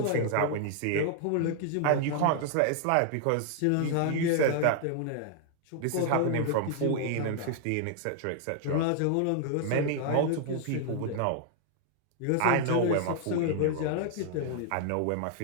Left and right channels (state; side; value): different; both; correlation 0.00